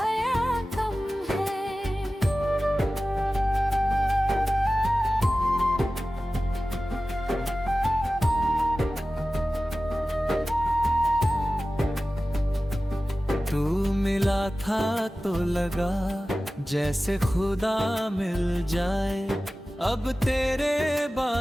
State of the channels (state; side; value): normal; both; correlation 0.95